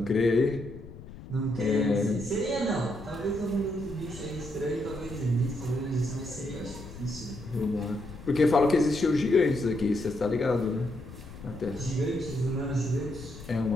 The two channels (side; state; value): left; noise; rumble, 15 dB below the sound